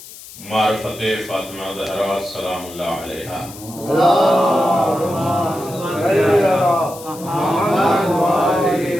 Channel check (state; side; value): noise; left; hiss, 17 dB below the sound